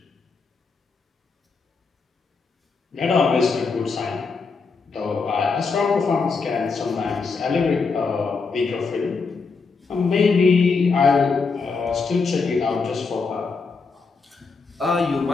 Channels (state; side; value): quieter; right; 4.6 dB